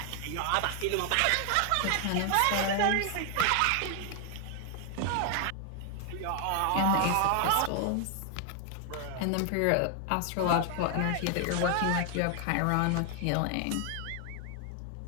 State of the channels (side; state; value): both; different; correlation 0.00